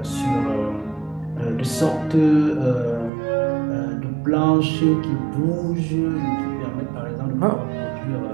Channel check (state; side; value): drops out; left; at 3.1 s